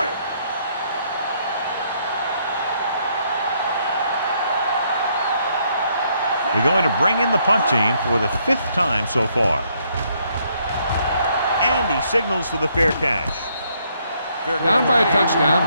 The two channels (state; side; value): inverted; both; correlation -0.70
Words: They're going to bring in the punt team for the 5th time so far. And he signals for the fair catch. Down by a touchdown,